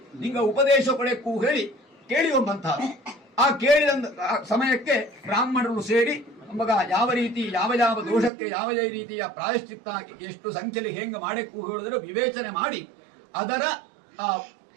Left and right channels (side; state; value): left; drops out; at 8.3 s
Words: ನಿಂಗ ಉಪದೇಶ ಕೊಳೆಕ್ಕೂ ಹೇಳಿ ಕೇಳಿಯುವಂತಹ ಆ ಕೇಳಿದ ಸಮಯಕ್ಕೆ ಬ್ರಾಹ್ಮಣರು ಸೇರಿ ಮಗ ಯಾವ ರೀತಿ ಯಾವ ದೋಷಕ್ಕೆ ಯಾವ ರೀತಿಯ ಪ್ರಾಯಶ್ಚಿತ್ತ ಎಷ್ಟು ಸಂಖ್ಯೆಯಲ್ಲಿ ಹೆಂಗೆ ಮಾಡಕ್ಕೂ ಹೇಳಿದ್ರೆ ವಿವೇಚನೆ ಮಾಡಿ ಅದರ